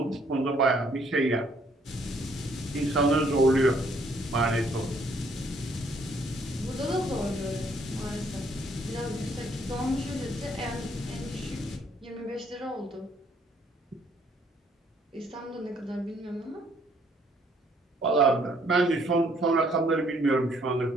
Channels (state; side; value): normal; both; correlation 0.65